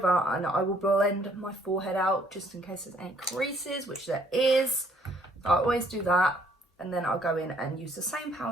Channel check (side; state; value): both; normal; correlation 0.64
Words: and I will blend my forehead out just in case there's any creases, which there is. So I always do that, and then I'll go in and use the same